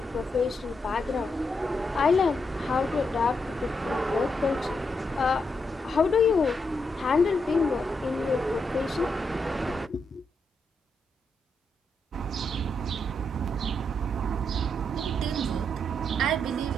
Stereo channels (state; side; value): normal; both; correlation 0.81